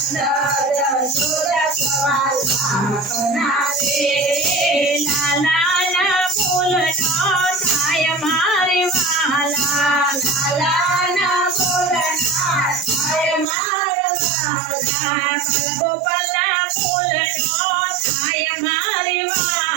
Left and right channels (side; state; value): left; drops out; at 13.5 s